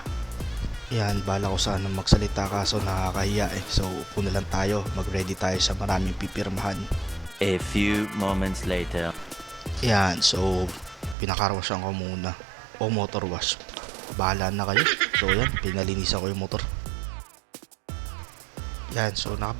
Yan, bahala ko sana magsalita kaso nakakahiya eh. So, puno lang tayo, mag-ready tayo sa maraming pipirmahan. A few moments later. Yan, so pinakarwashan ko muna o motor wash, bahala na kayo. So yan, pinalinisan ko yung motor. Yan, so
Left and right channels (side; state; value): left; drops out; at 11.2 s